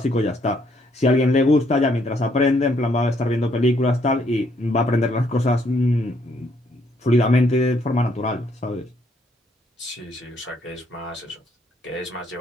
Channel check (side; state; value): both; normal; correlation 0.69